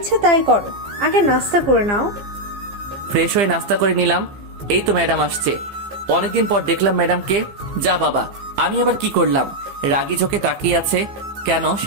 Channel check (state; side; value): late; left; 15 ms